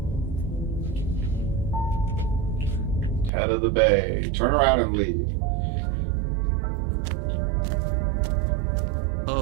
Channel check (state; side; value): drops out; left; at 3.3 s